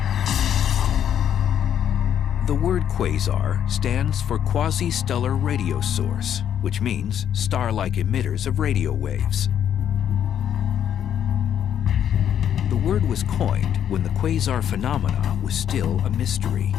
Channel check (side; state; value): right; quieter; 9.5 dB